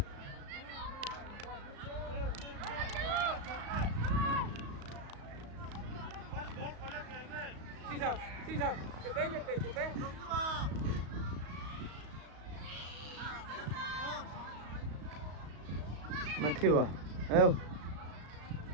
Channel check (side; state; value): left; late; 35 ms